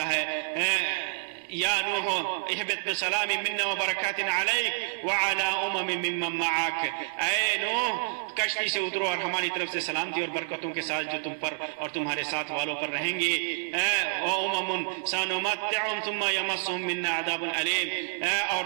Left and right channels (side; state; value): left; silent; digital silence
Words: ہے یا نوح اہبط بسلام منا وبرکات علیک وعلی ممن معک، اے نوح کشتی سے اترو اور ہماری طرف سے سلامتی اور برکتوں کے ساتھ جو تم پر اور تمہارے ساتھ والوں پر رہیں گے، سنمتعهم ثم یمسهم منا عذاب علیم، اور